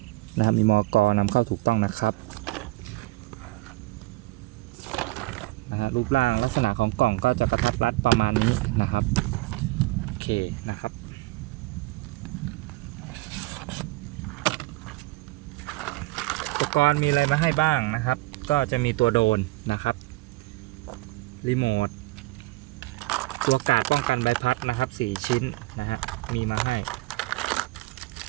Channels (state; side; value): quieter; left; 20.7 dB